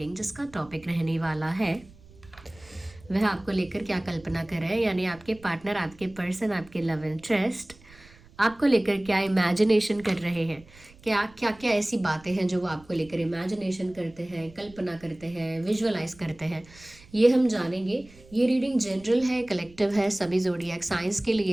जिसका टॉपिक रहने वाला है वह आपको लेकर क्या कल्पना कर रहे हैं, यानी आपके पार्टनर, आपके पर्सन, आपके लव इंटरेस्ट आपको लेकर क्या इमेजिनेशन कर रहे हैं। क्या क्या क्या ऐसी बातें हैं जो वो आपको लेकर इमेजिनेशन करते हैं, कल्पना करते हैं, विजुअलाइज करते हैं, ये हम जानेंगे। ये रीडिंग जनरल है, कलेक्टिव है, सभी ज़ोडिएक साइंस के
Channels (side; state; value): right; noise; rumble, 24 dB below the sound